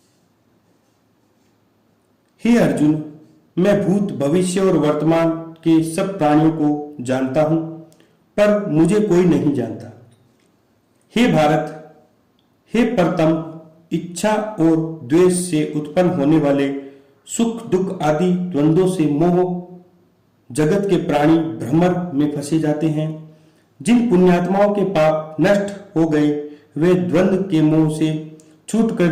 हे अर्जुन, मैं भूत, भविष्य और वर्तमान के सब प्राणियों को जानता हूं, पर मुझे कोई नहीं जानता। हे भारत, हे प्रथम, इच्छा और द्वेष से उत्पन्न होने वाले सुख दुख आदि द्वंद्वों से मोह जगत के प्राणी भ्रमर में फंसे जाते हैं। जिन पुण्यात्माओं के पाप नष्ट हो गए वे द्वंद्व के मोह से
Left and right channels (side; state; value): both; identical; correlation 1.00